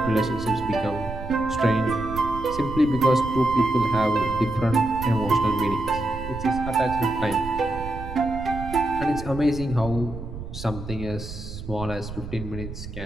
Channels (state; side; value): noise; right; rumble, 10 dB below the sound